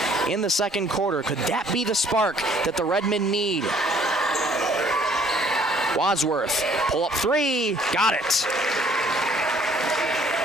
in the second quarter. Could that be the spark that the Redmen need? Wadsworth, pull up 3, got it.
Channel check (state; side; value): normal; both; correlation 0.60